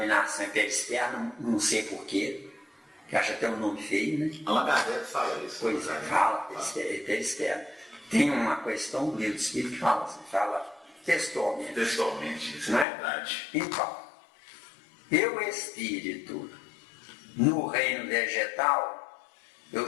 é perispírito, não sei porquê, que acha até um nome feio, né? Allan Kardec fala isso. Pois é, fala, perispírito. Tem uma questão do livro do espírito que fala assim, fala textualmente. Textualmente, isso não é verdade. Então, eu, espírito, no reino vegetal,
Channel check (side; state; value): right; drops out; at 12.9 s